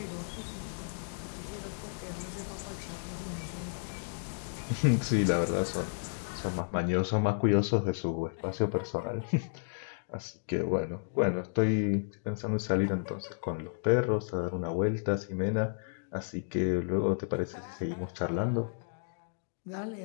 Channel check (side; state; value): right; silent; digital silence